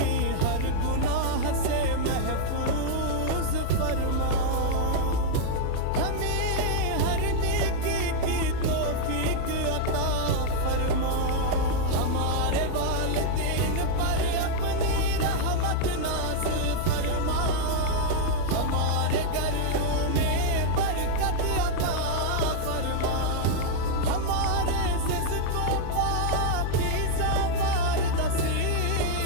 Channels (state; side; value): different; both; correlation -0.01